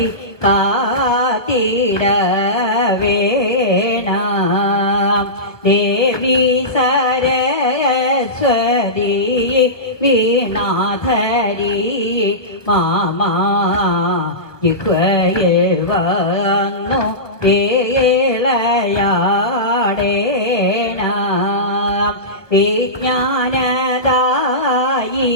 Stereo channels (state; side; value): late; right; 1.1 ms